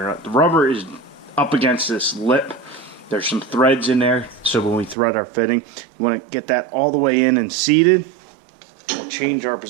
or not. The rubber is up against this lip. There's some threads in there, so when we thread our fitting, you want to get that all the way in and seated. We'll change our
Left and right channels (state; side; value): drops out; left; at 5.0 s